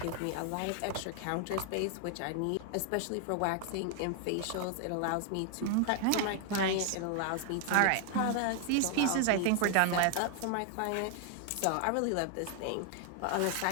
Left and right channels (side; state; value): both; different; correlation 0.00